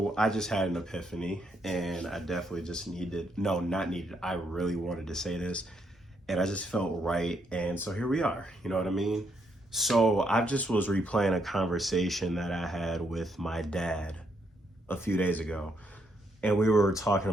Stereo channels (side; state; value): both; normal; correlation 0.76